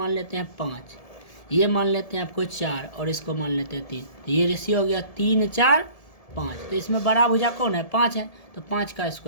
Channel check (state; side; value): late; right; 1.7 ms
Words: लेते हैं 5, ये मान लेते हैं आपको 4 और इसको मान लेते हैं 3, तो ये रेशियो हो गया 3 4 5। तो इसमें बड़ा भुजा कौन है, 5 है, तो 5 का